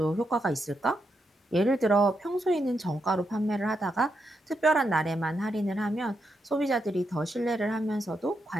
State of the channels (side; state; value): both; normal; correlation 0.83